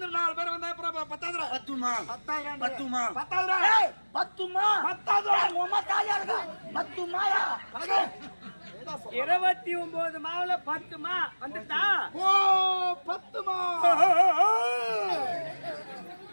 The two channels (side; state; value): both; inverted; correlation -1.00